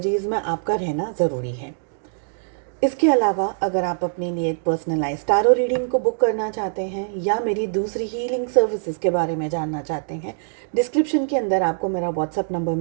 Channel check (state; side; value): silent; left; digital silence